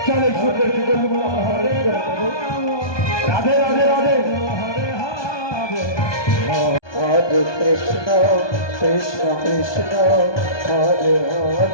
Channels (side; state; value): right; late; 1.2 ms